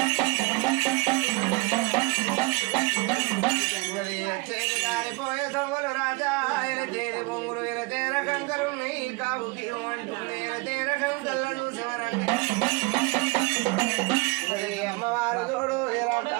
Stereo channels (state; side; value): quieter; left; 26.9 dB